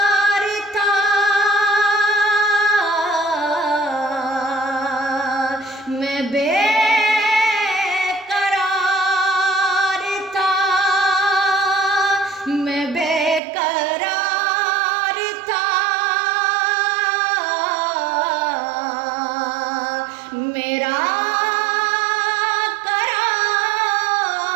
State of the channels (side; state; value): left; drops out; at 13.4 s